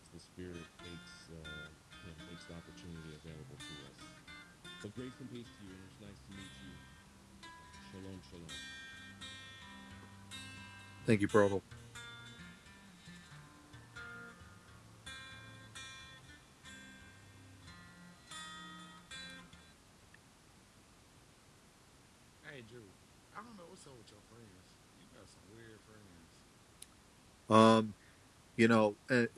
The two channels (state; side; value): identical; both; correlation 1.00